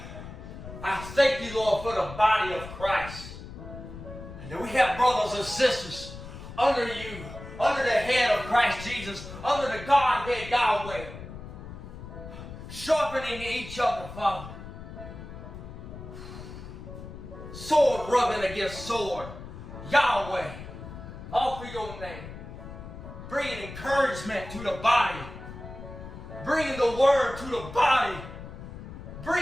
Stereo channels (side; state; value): left; noise; rumble, 12 dB below the sound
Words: I thank you, Lord, for the body of Christ. And that we have brothers and sisters under you, under the head of Christ Jesus, under the Godhead Yahweh, sharpening each other, Father. Sword rubbing against sword. Yahweh, offer your name. Bringing encouragement to the body. Bringing the word to the body.